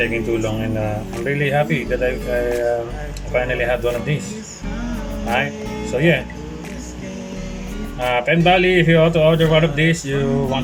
too long, and I'm really happy that I finally had one of these. Alright, so yeah. Pen Bali, if you ought to order one of these, you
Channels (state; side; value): identical; both; correlation 1.00